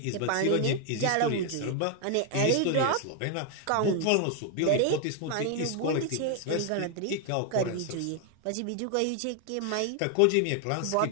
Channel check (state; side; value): different; both; correlation 0.01